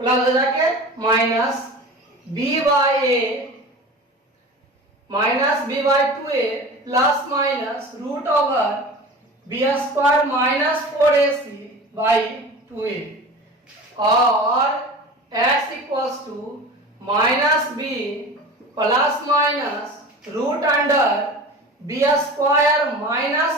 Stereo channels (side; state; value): both; normal; correlation 0.36